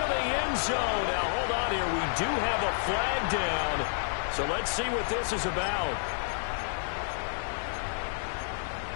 end zone. Now, hold on here. We do have a flag down, so let's see what this is about.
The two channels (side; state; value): right; silent; digital silence